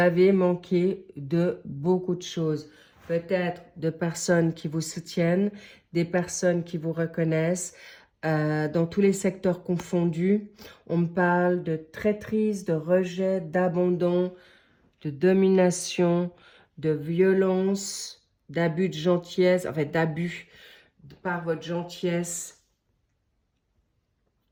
manqué de beaucoup de choses. Peut-être de personnes qui vous soutiennent, des personnes qui vous reconnaissent, dans tous les secteurs confondus. On me parle de traîtrise, de rejet, d'abandon, de domination, de violence, d'abus de gentillesse, en fait d'abus par votre gentillesse.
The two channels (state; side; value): identical; both; correlation 1.00